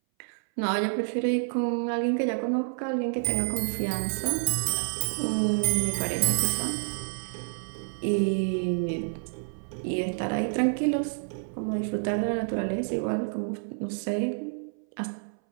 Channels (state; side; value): silent; left; 58 dB below the other